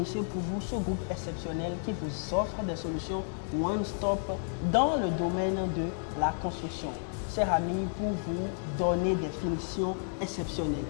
pour vous ce groupe exceptionnel qui vous offre des solutions one-stop dans le domaine de la construction. Chers amis, pour vous donner des finitions exceptionnelles.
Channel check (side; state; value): right; silent; digital silence